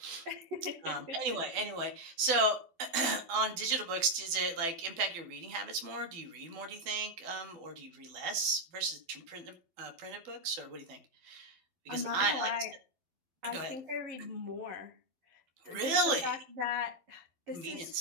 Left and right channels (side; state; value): left; late; 12 ms